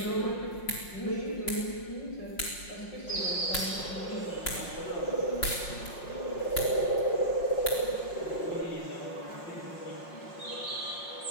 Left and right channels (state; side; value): late; right; 5.6 ms